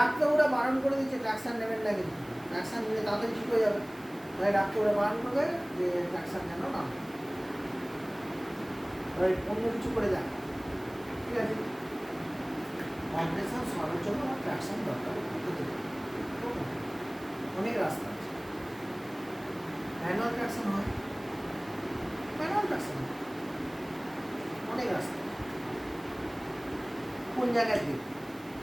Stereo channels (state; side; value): noise; right; hiss, 24 dB below the sound